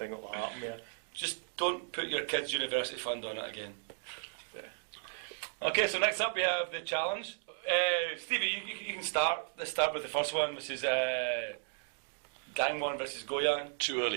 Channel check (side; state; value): left; silent; digital silence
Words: that will happen, yeah. Just don't put your kids' university fund on it again. Yeah. Okay, so next up we have the challenge. Stevie, you can start. Let's start with the first one, which is Gangwon versus Goyang. Too